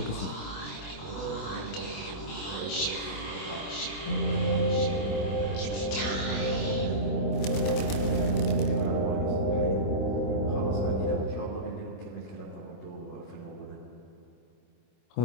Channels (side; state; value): right; late; 26 ms